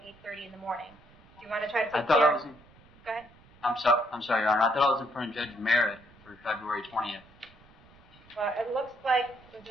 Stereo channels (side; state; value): right; noise; rumble, 26 dB below the sound